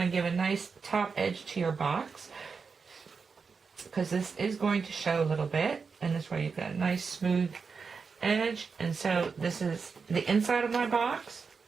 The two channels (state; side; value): quieter; left; 5.2 dB